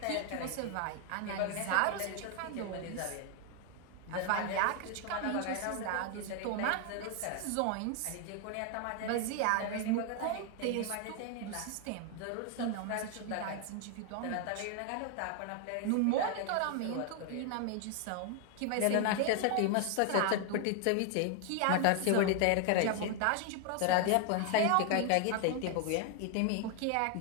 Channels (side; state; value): both; different; correlation 0.00